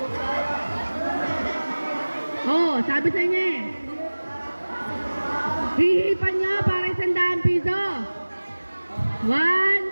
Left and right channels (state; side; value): inverted; both; correlation -1.00